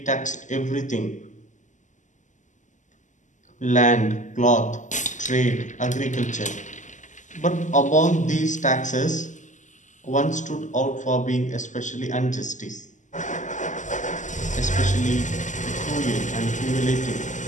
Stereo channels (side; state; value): right; late; 0.36 ms